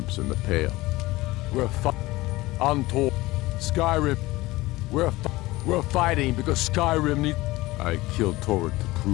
in the Pale. Untold. Skyrim. We're fighting because Skyrim needs... I killed Torrid to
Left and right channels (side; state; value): right; quieter; 19.5 dB